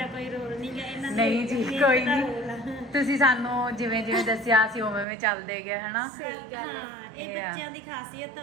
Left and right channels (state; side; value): drops out; left; at 5.1 s